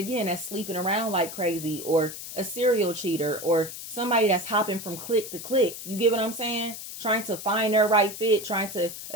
that's sleeping around like crazy, or a serial cheater, or somebody that's hopping from clique to clique. You get what I'm saying? Trying to find their right fit, trying to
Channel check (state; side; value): noise; left; hiss, 10 dB below the sound